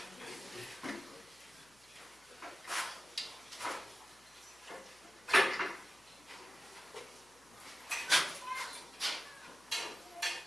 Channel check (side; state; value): left; noise; hum, 30 dB below the sound